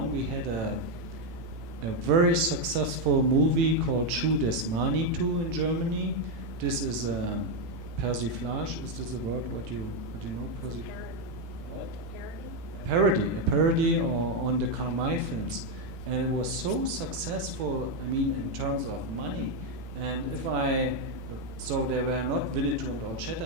we had a very successful movie called Schuh des Manitou in Germany. This is a persiflage. Is this a word? What do you know? A parody on the Karl May films, and it was so successful. I mean, in terms of money. And so there were not Winnetou and Old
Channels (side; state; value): left; late; 18 ms